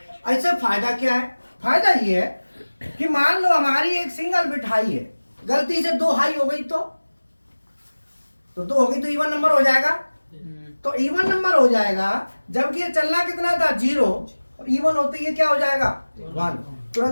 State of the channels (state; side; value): inverted; both; correlation -1.00